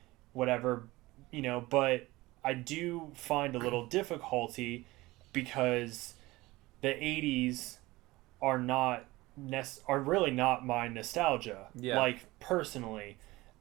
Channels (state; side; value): quieter; left; 20.0 dB